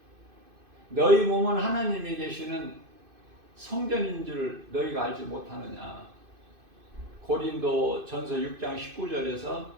너희 몸은 하나님이 계시는 성전인 줄 너희가 알지 못하느냐. 고린도전서 6장 19절에서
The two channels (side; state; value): left; late; 2.5 ms